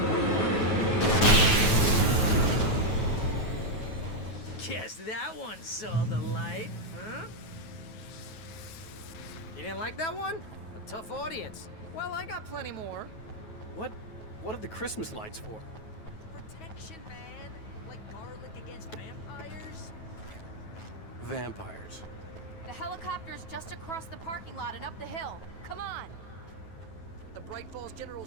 Guess that one saw the light, huh? You didn't like that one? A tough audience. Well, I got plenty more. What are the Christmas lights for? Protection, man. Like garlic against vampires. Vampires. The helicopter's just across the parking lot and up the hill. Come on. The Bright Falls General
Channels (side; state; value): right; late; 9.3 ms